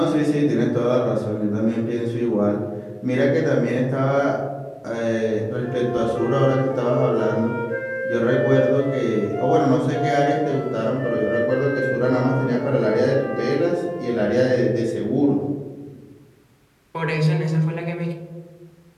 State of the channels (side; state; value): both; identical; correlation 1.00